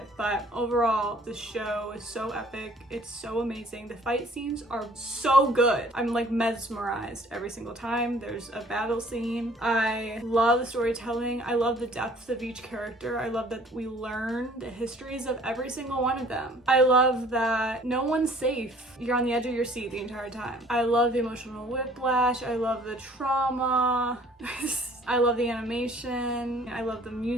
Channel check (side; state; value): both; normal; correlation 0.55